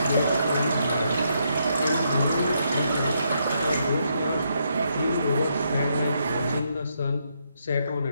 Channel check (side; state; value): both; inverted; correlation -0.77